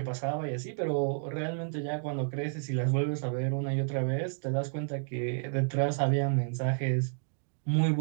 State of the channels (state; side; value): silent; left; digital silence